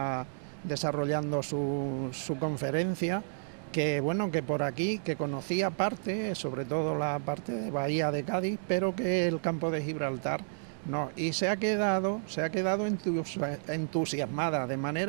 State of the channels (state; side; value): silent; left; digital silence